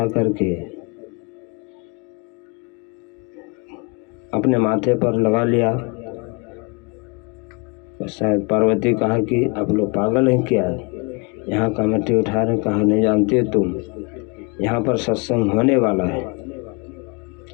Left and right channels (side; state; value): right; quieter; 30.3 dB